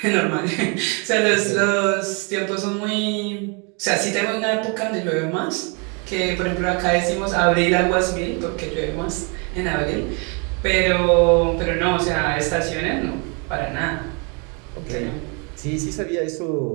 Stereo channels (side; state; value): left; quieter; 33.9 dB